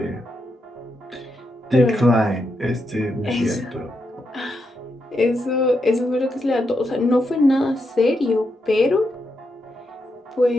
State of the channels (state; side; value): normal; both; correlation 0.83